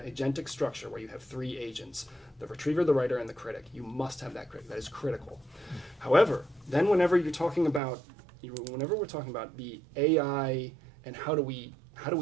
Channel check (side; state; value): left; drops out; at 7.8 s